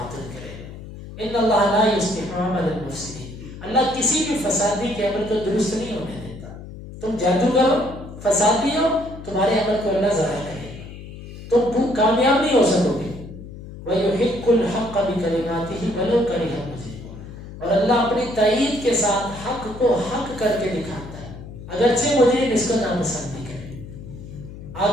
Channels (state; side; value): noise; left; hum, 13 dB below the sound